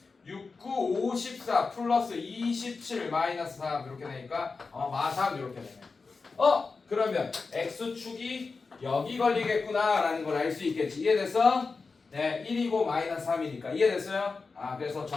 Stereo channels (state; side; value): quieter; right; 4.4 dB